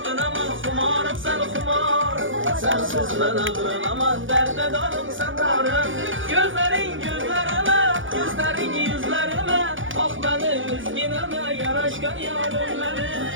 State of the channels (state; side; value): late; left; 0.57 ms